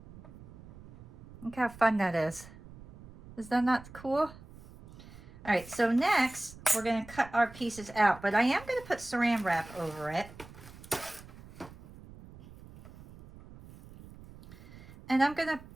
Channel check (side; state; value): right; noise; rumble, 18 dB below the sound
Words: Look how fun that is. Is that not cool? All right, so next we're going to cut our pieces out, but I am going to put saran wrap over it. And I'm going to